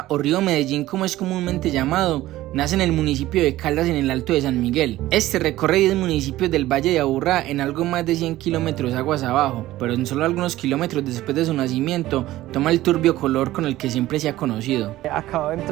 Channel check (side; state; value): left; quieter; 15.8 dB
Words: o río Medellín como es comúnmente llamado, nace en el municipio de Caldas en el Alto de San Miguel. Este recorre 10 municipios del Valle de Aburrá en algo más de 100 kilómetros aguas abajo, pero en solo algunos kilómetros después de su nacimiento toma el turbio color con el que siempre se ha conocido. Acabo de